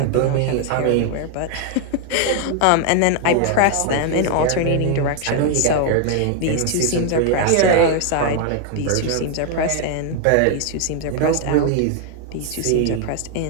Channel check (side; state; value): both; different; correlation 0.00